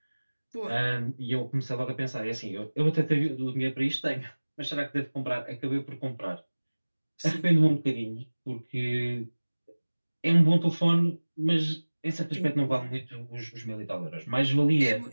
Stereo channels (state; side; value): inverted; both; correlation -1.00